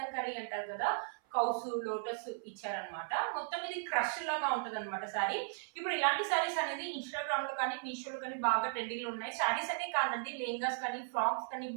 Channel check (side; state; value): left; silent; 53 dB below the other